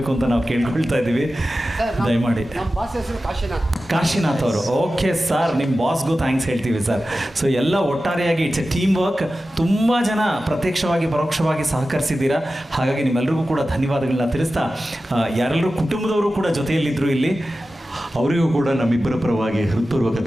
ಅಂತ ನಾವು ಕೇಳ್ಕೊಳ್ತಾ ಇದ್ದೀವಿ. ದಯಮಾಡಿ. ಕಾಶಿನಾಥ್ ಅವರು, ಓಕೆ ಸರ್, ನಿಮ್ಮ ಬಾಸ್ಗೂ ಥ್ಯಾಂಕ್ಸ್ ಹೇಳ್ತೀವಿ ಸರ್. ಸೊ ಎಲ್ಲ ಒಟ್ಟಾರೆಯಾಗಿ ಇಟ್ಸ್ ಎ ಟೀಮ್ ವರ್ಕ್. ತುಂಬ ಜನ ಪ್ರತ್ಯಕ್ಷವಾಗಿ ಪರೋಕ್ಷವಾಗಿ ಸಹಕರಿಸಿದ್ದೀರಾ. ಹಾಗಾಗಿ ನಿಮ್ಮೆಲ್ಲರಿಗೂ ಕೂಡ ಧನ್ಯವಾದಗಳನ್ನ ತಿಳಿಸ್ತಾ, ಯಾರೆಲ್ಲರೂ ಕುಟುಂಬದವರು ಕೂಡ ಜೊತೆಯಲ್ಲಿದ್ದರು ಇಲ್ಲಿ, ಅವರಿಗೂ ಕೂಡ ನಮ್ಮಿಬ್ಬರ ಪರವಾಗಿ ಹೃತ್ಪೂರ್ವಕ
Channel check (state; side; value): normal; both; correlation 0.94